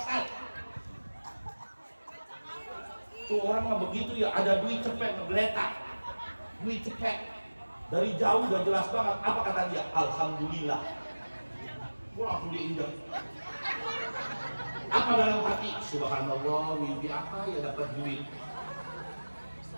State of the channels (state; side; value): inverted; both; correlation -1.00